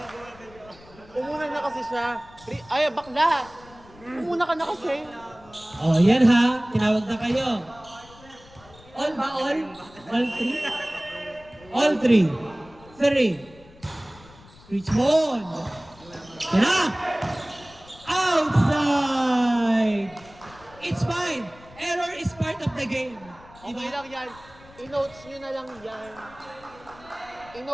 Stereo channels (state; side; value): noise; left; rumble, 23 dB below the sound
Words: Umuna na kasi siya. Ay, bakla! Umuna ka na kasi. Oh, yan ha. Tinawag na kayo. All ba all? All three? All three. Three. Richmond. Yan na. Outside. It's fine. Error is part of the game. Okay lang yan. I-notes nyo na lang yan.